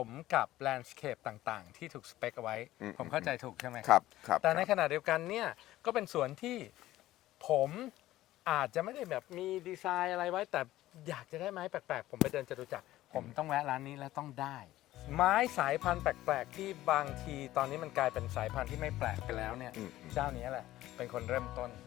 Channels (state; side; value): quieter; right; 15.3 dB